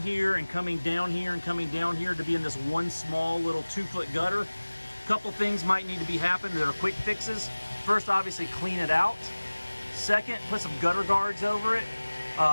and coming down here and coming down here to be in this one small little 2-foot gutter. A couple things might need to be happening that are quick fixes. First, obviously clean it out. Second, put some gutter guards over it.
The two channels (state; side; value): inverted; both; correlation -1.00